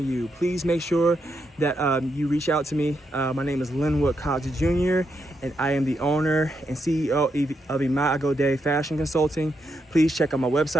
Please make sure that you reach out to me. My name is Linwood Cox Jr., and I am the owner and CEO of Imago Day Fashion Consulting. Please check out my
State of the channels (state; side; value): normal; both; correlation 0.81